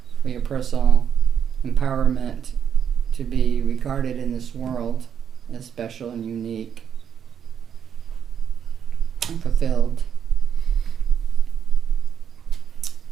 for your personal empowerment to be regarded in this world as special and unique and fulfilled.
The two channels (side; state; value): left; quieter; 8.2 dB